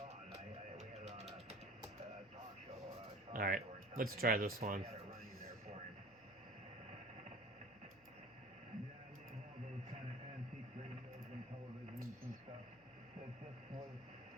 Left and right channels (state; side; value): noise; left; hum, 26 dB below the sound